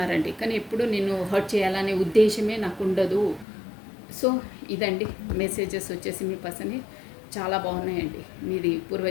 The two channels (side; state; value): right; drops out; at 3.5 s